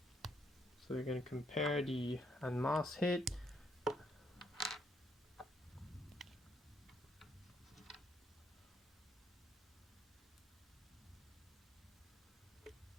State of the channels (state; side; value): normal; both; correlation 0.73